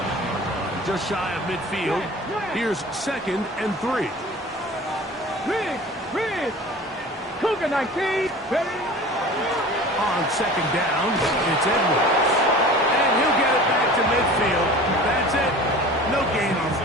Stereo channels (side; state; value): both; normal; correlation 0.40